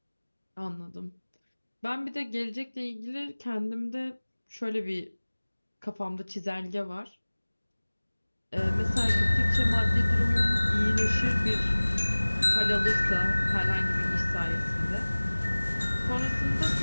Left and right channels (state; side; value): inverted; both; correlation -1.00